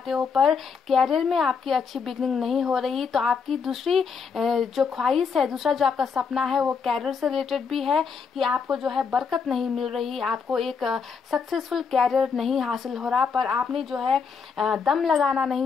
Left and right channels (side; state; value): right; quieter; 5.8 dB